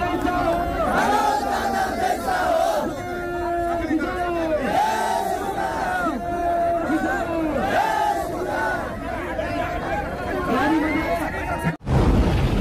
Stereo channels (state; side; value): identical; both; correlation 1.00